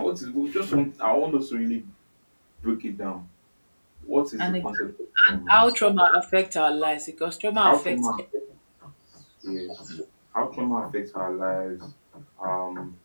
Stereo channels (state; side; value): inverted; both; correlation -1.00